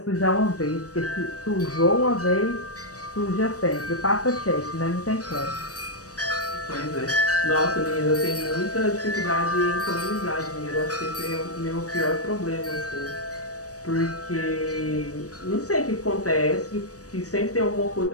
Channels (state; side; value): late; right; 0.66 ms